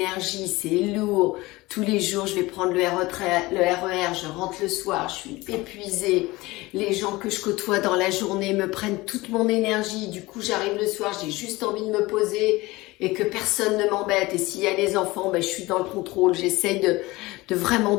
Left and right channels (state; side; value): quieter; right; 20.7 dB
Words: c'est lourd. Tous les jours, je vais prendre le RER, je rentre le soir, je suis épuisée. Les gens que je côtoie dans la journée me prennent toute mon énergie. Du coup, j'arrive le soir, j'ai juste envie de me poser et que personne ne m'embête. Et s'il y a des enfants, ben, je suis dans le contrôle. J'essaye de vraiment